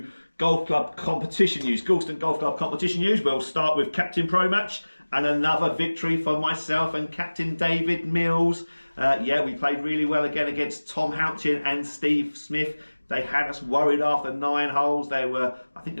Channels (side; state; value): both; inverted; correlation -1.00